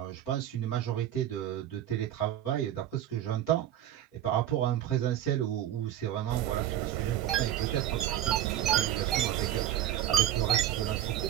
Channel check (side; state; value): left; quieter; 11.7 dB